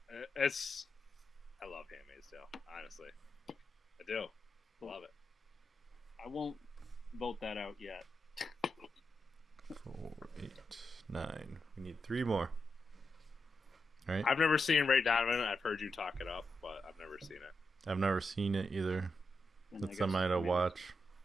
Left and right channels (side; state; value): both; normal; correlation 0.86